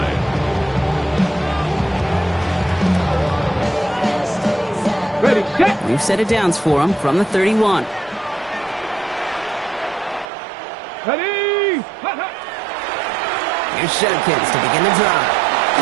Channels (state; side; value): drops out; left; at 10.2 s